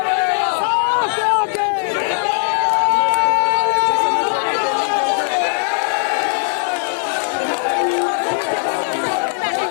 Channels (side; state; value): right; silent; 67 dB below the other